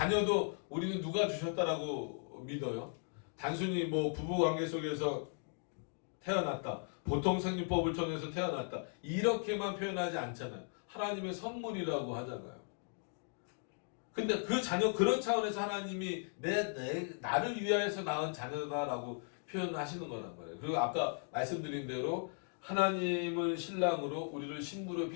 우리는 누가 주셨다라고 믿어요? 단순히 부부관계 속에서 태어났다, 보통 생리법을 통해서 태어났다, 이렇게만 표현하지 않잖아요. 하나님의 선물이라고 하잖아요. 근데 그 자녀, 그런 차원에서 하나님이 나를 위하여서 낳은 자녀다라고 표현하시는 거란 말이에요. 그리고 아까 말씀드린 대로 하나님을 신랑으로 우리를 신부로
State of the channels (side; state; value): right; silent; 53 dB below the other